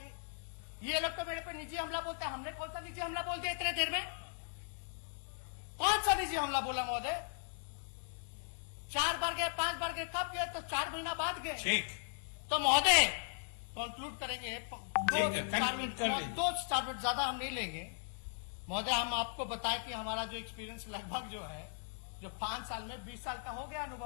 ये लोग तो मेरे पे निजी हमला बोलते हैं। हमने कौन सा निजी हमला बोल दिया इतने देर में? कौन सा निजी हमला बोला महोदय? 4 बार गए, 5 बार गए, कब गए? तो 4 महीना बाद गए। ठीक, तो महोदय कंक्लूड करेंगे, ठीक है, conclude कर लीजिए। 2-4 मिनट ज्यादा हम नहीं लेंगे महोदय। हम आपको बताएं कि हमारा जो एक्सपीरियंस लगभग जो है, जो 5 साल में 20 साल का हो गया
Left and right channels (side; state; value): right; silent; digital silence